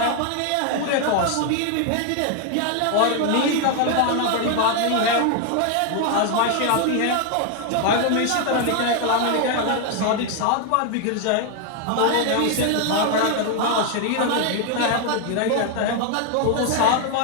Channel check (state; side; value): different; both; correlation 0.01